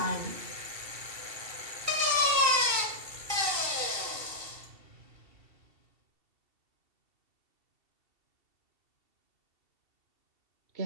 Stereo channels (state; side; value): late; left; 2.7 ms